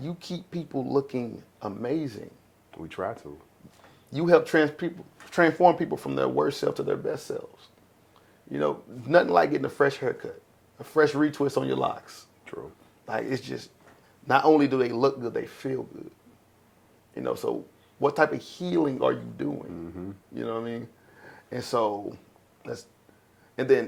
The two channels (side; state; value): both; identical; correlation 1.00